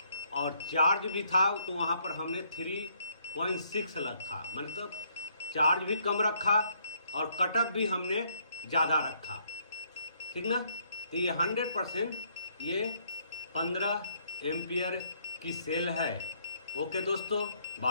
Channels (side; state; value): both; inverted; correlation -0.68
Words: और चार्ज भी था तो वहाँ पर हमने 3.6 रखा, मतलब चार्ज भी कम रखा और कटअप भी हमने ज़्यादा रखा, ठीक ना। तो ये 100% ये 15 एम्पियर की सेल है। ओके दोस्तों,